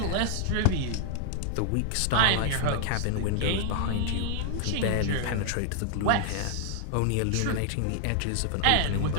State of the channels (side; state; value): both; different; correlation 0.00